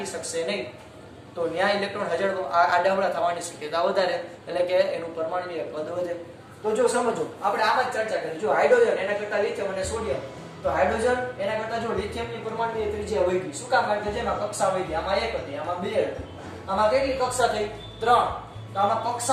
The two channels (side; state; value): both; identical; correlation 1.00